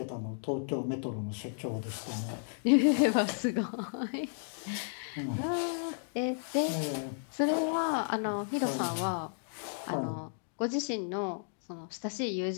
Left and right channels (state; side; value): silent; right; digital silence